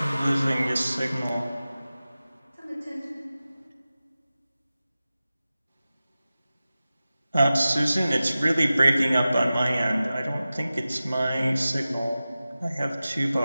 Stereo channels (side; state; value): both; inverted; correlation -0.95